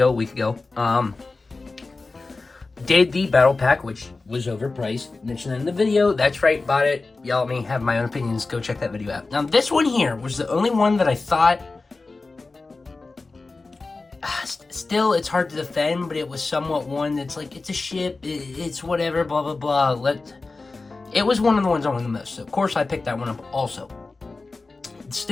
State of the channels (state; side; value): quieter; right; 3.7 dB